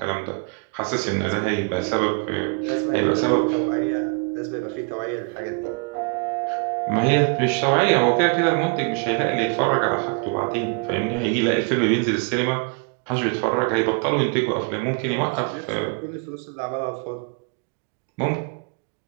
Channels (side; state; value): left; quieter; 34.4 dB